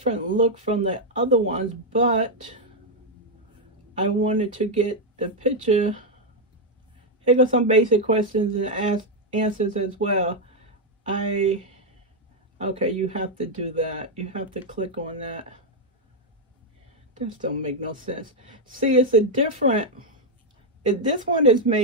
look from the other ones, but I wanted to get the picture. Here go some basic questions and answers as well. Okay, you have to do that. You have to click on that. This don't make no sense. See, it's a different, this one is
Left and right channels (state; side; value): normal; both; correlation 0.00